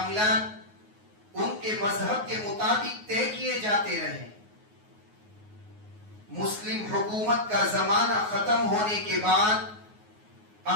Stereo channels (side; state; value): left; late; 9.5 ms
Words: ان کے مذہب کے مطابق طے کیے جاتے رہے۔ مسلم حکومت کا زمانہ ختم ہونے کے بعد